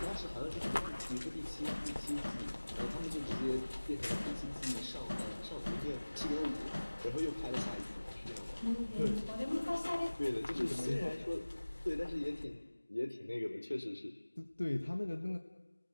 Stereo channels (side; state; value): both; inverted; correlation -1.00